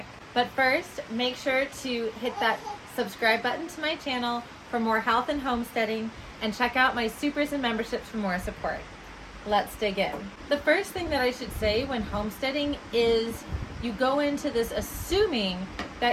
But first, make sure to hit that subscribe button to my channel for more health and homesteading, and check out my supers and memberships for more support. Let's dig in. The first thing that I should say when homesteading is you go into this assuming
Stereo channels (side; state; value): both; identical; correlation 1.00